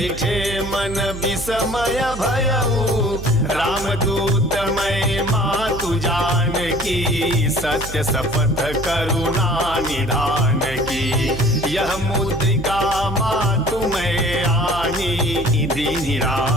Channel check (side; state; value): right; noise; hum, 10 dB below the sound